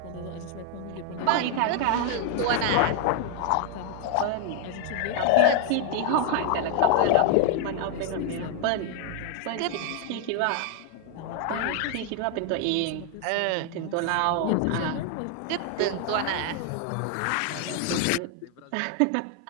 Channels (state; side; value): different; both; correlation 0.00